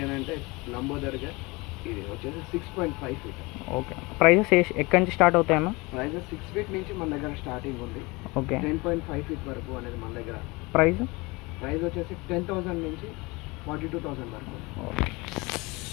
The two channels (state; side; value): quieter; right; 24.8 dB